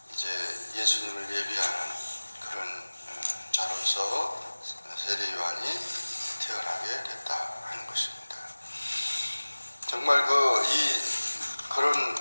이제 예수님을 예비하는 그런 자로서 세례 요한이 태어나게 됐다 하는 것입니다. 정말 그런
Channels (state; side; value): inverted; both; correlation -1.00